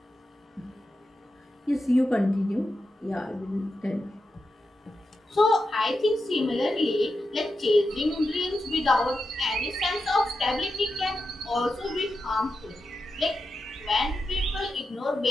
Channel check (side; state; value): both; normal; correlation 0.89